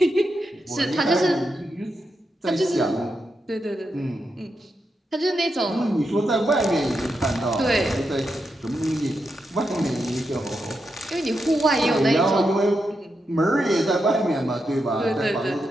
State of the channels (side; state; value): both; normal; correlation 0.85